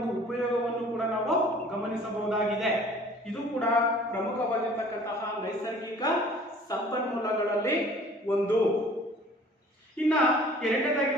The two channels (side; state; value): both; normal; correlation 0.50